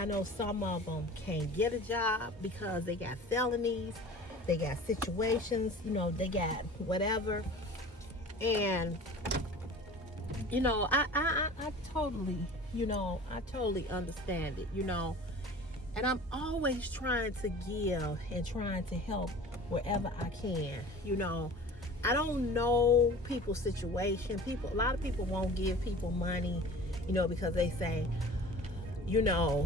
know some of them can't get a job because they got felonies, they got situations, they got whatever. And, I totally, I totally understand it, And I'm always trying to give and trying to help wherever I can, I don't know people's situation. A lot of people won't give people money, because they say,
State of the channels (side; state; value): both; normal; correlation 0.41